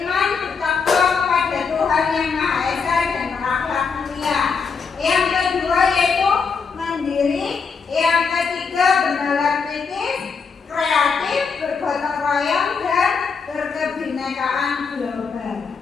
bertakwa kepada Tuhan Yang Maha Esa dan berakhlak mulia. Yang kedua yaitu mandiri. Yang ketiga, bernalar kritis, kreatif, bergotong royong, dan berkebinekaan global.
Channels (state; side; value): quieter; right; 5.5 dB